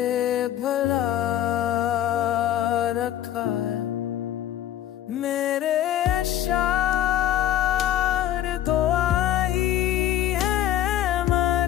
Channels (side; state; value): right; quieter; 11.8 dB